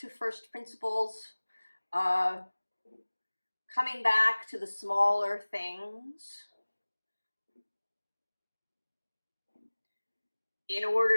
first principles, coming back to the smaller things in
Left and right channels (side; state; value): both; inverted; correlation -1.00